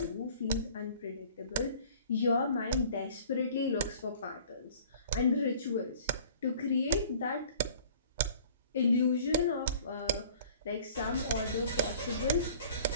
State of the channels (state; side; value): inverted; both; correlation -0.50